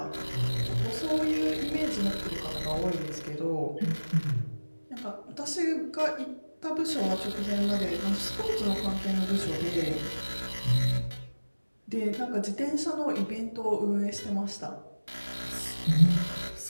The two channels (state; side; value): inverted; both; correlation -1.00